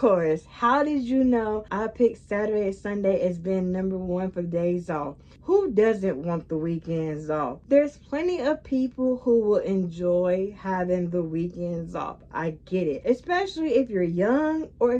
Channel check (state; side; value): identical; both; correlation 1.00